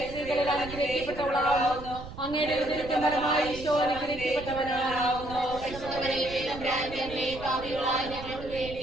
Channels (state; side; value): noise; right; rumble, 12 dB below the sound